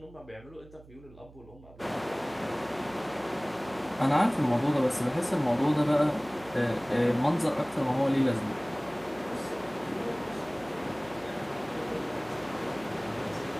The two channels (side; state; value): right; noise; hum, 21 dB below the sound